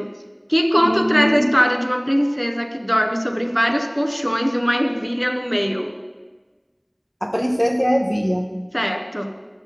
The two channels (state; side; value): identical; both; correlation 1.00